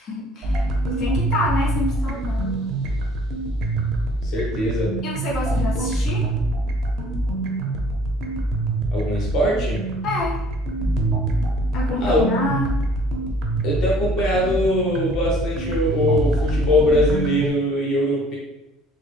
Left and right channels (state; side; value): normal; both; correlation 0.56